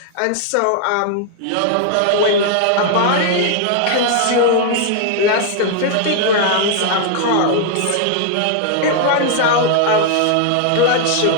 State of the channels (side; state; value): both; different; correlation 0.00